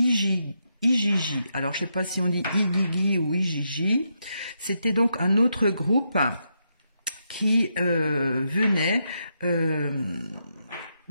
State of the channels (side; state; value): both; inverted; correlation -0.82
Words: Alors, je ne sais pas si on dit Igigi ou Igigi. C'était donc un autre groupe qui venait de